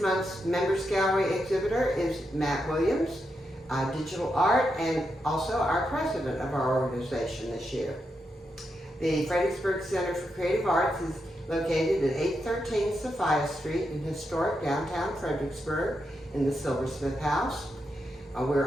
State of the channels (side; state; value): both; normal; correlation 0.84